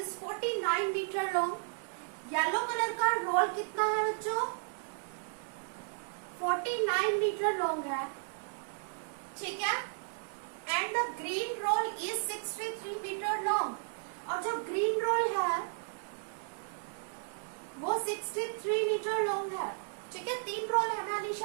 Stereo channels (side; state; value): left; silent; 55 dB below the other